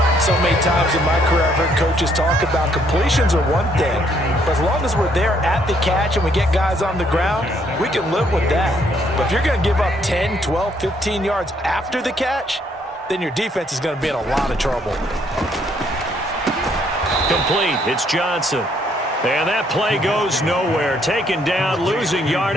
So many times in my career, I've heard coaches talk about completions are one thing. But as long as we're there at the catch and we get guys on the ground, we can live with that. But if you're going to give up 10, 12, 15 yards after the catch, then your defense is going to be in a lot of trouble. Complete. It's Johnson. And that play goes nowhere. Taken down, losing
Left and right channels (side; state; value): both; normal; correlation 0.68